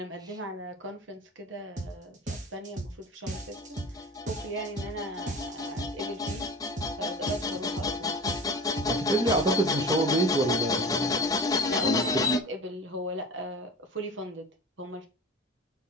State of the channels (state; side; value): normal; both; correlation 0.36